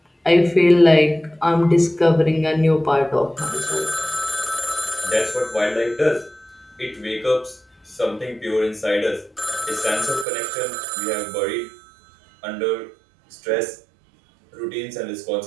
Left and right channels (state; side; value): drops out; left; at 10.2 s